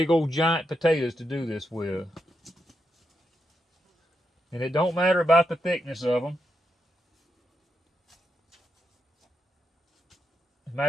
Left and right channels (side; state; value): both; normal; correlation 0.83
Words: old giant potatoes to do this with. And it don't matter about the thickness of them. As a